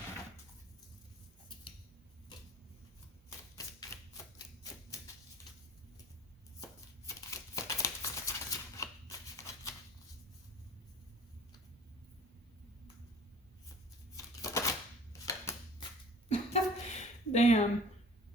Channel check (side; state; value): both; normal; correlation 0.46